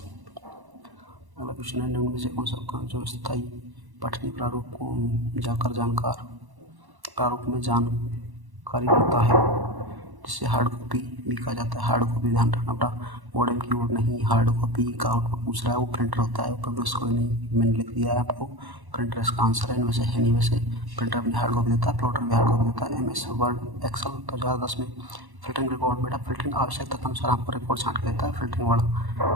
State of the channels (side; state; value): left; late; 1.1 ms